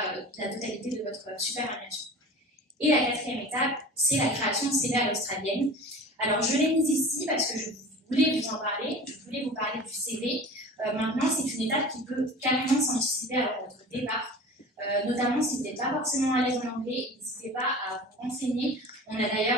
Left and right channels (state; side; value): normal; both; correlation 0.38